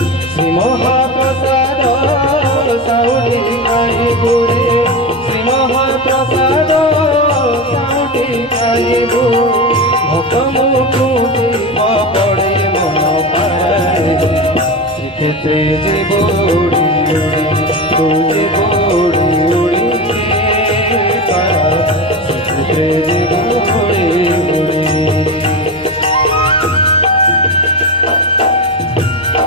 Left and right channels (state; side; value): normal; both; correlation 0.21